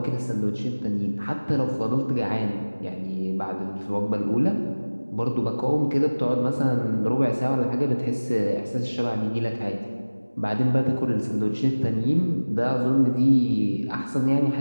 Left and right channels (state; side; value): inverted; both; correlation -1.00